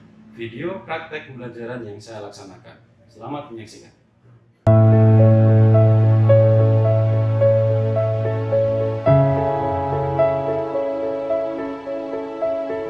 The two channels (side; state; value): both; identical; correlation 1.00